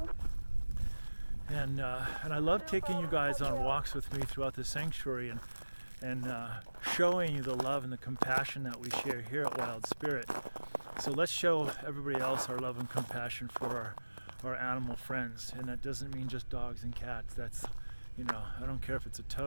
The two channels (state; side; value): inverted; both; correlation -1.00